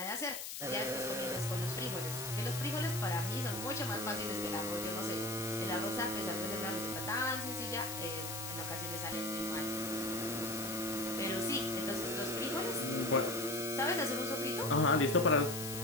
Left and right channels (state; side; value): noise; left; hiss, 6 dB below the sound